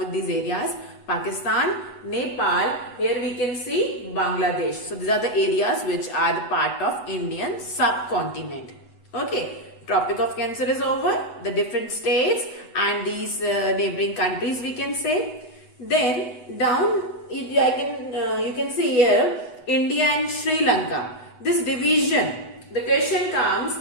these areas. Pakistan, Nepal, here we can see Bangladesh. So these are the areas which are the part of Indian subcontinent. Okay, Tropic of Cancer is over. The different states and these neighboring countries we can say. Then down you can see here India and Sri Lanka. This division, the question comes,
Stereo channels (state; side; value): late; right; 8.1 ms